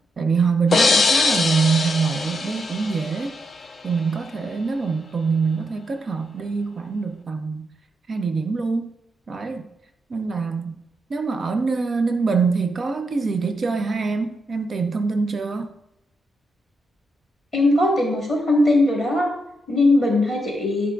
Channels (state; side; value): normal; both; correlation 0.82